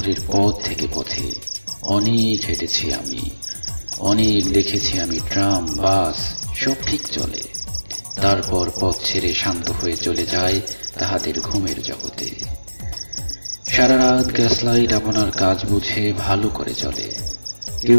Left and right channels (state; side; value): inverted; both; correlation -1.00